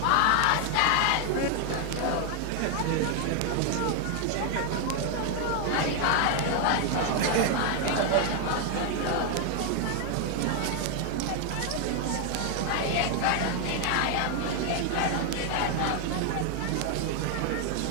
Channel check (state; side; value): different; both; correlation 0.00